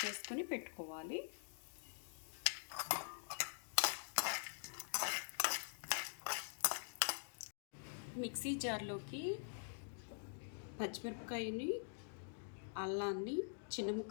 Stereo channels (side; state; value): right; silent; digital silence